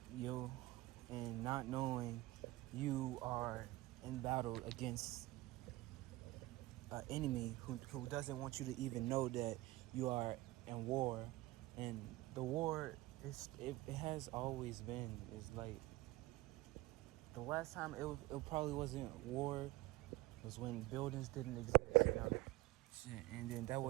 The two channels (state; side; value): quieter; left; 18.9 dB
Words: you, and not knowing you are in battle against an enemy who doesn't want you to even know that you are in war. And the war It has always been. It's like the last time it probably wasn't war was when buildings didn't exist, you know. And then that